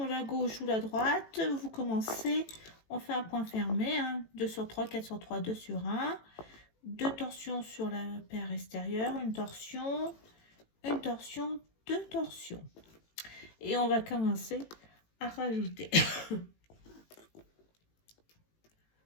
la gauche ou la droite, vous commencez, on fait un point fermé, hein, 2 sur 3, 4 sur 3, 2 sur 1. 2 torsions sur la paire extérieure, une torsion, 2 torsions. et on va commencer à rajouter.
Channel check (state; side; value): late; right; 18 ms